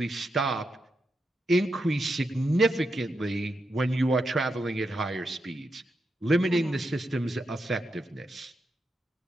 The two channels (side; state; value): both; normal; correlation 0.85